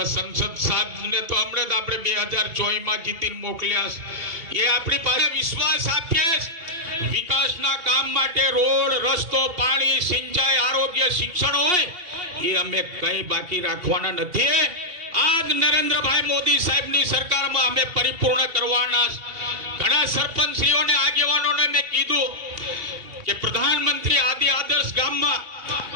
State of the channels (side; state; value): left; late; 2.8 ms